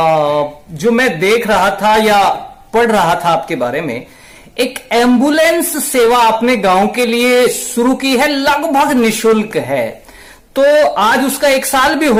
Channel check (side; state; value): both; identical; correlation 1.00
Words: जो मैं देख रहा था या पढ़ रहा था आपके बारे में, एक एम्बुलेंस सेवा आपने गांव के लिए शुरू की है, लगभग निशुल्क है। तो आज उसका 1 साल भी